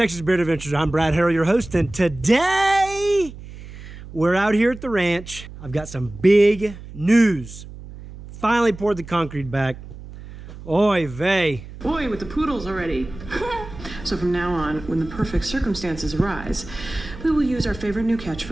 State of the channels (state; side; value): noise; right; hum, 15 dB below the sound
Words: Beard Adventures. I'm Brad Harrell, your host, and today we're out here at the ranch. I've got some big news. Finally poured the concrete back. Oy vey. Boy, with the poodles already. So from now on, when the perfect circumstances arise, we will use our favorite new